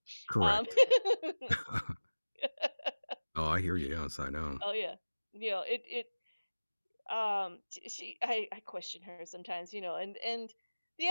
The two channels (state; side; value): inverted; both; correlation -1.00